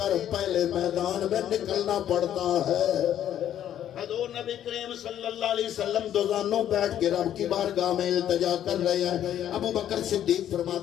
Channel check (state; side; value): quieter; right; 10.8 dB